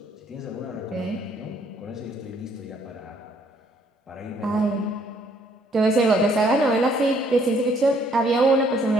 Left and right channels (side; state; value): both; normal; correlation 0.65